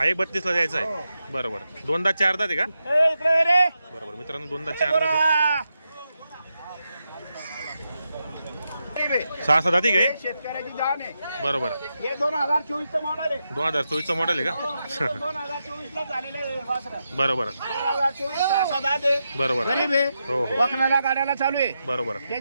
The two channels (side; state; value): both; inverted; correlation -0.87